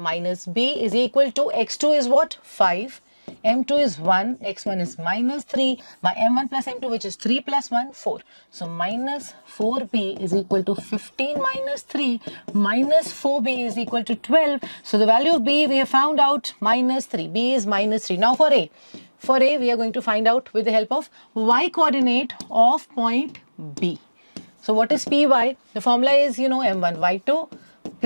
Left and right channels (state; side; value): inverted; both; correlation -1.00